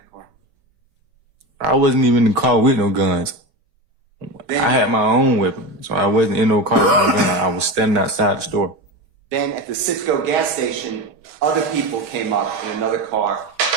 car? I wasn't even in the car with no guns. Then, I had my own weapon, so I wasn't in no car with no gun. I was standing outside the store. Then at the Citgo gas station, other people came up in another car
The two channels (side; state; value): left; late; 6.1 ms